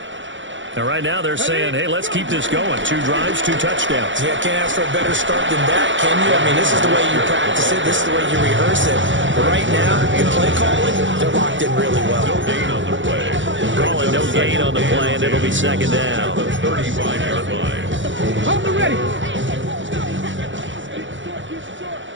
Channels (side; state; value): left; late; 0.55 ms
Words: And right now they're saying, hey, let's keep this going. 2 drives, 2 touchdowns. Yeah, can't ask for a better start than that, can you? I mean, this is the way you practice it. This is the way you rehearse it. But right now, the play calling, they're locked in really well. No gain on the play. Calling no gain on the play, and it'll be second down. 35-yard line. Hold the ready.